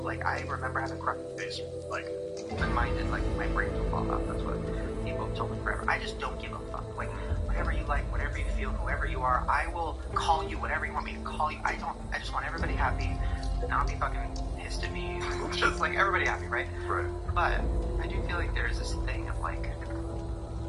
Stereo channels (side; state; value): both; identical; correlation 1.00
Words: like, I remember having crush face, like, reminded, like, my brain will fall off, that's what people have told me forever. I just don't give a fuck, like, whatever you like, whatever you feel, whoever you are, I will call you whatever you want me to call you. I just want everybody happy, not be fucking pissed at me, just like everybody happy, right? Right. But I do feel like there's this thing of like,